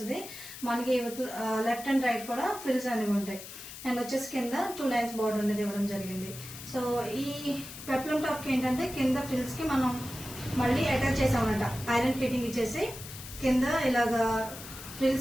మనకి లెఫ్ట్ అండ్ రైట్ కూడా ఫ్రిల్స్ అనేవి ఉంటాయి. అండ్ వచ్చేసి కింద 2 లైన్స్ బార్డర్ అనేది ఇవ్వడం జరిగింది. సో ఈ పెప్లం టాప్ కి ఏంటంటే కింద ఫ్రిల్స్ కి మనం మళ్ళీ అటాచ్ చేసామన్నమాట. ఐరన్ ఫిట్టింగ్ ఇచ్చేసి కింద ఇలాగా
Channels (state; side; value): noise; left; hiss, 13 dB below the sound